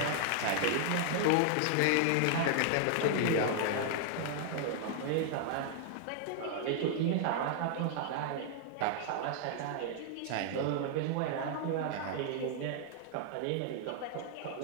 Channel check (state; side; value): different; both; correlation 0.00